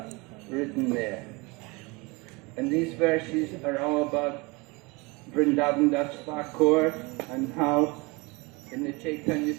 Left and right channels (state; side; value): quieter; left; 26.4 dB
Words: written there. And these verses are all about Vrindavan Das Thakur and how in the Chaitanya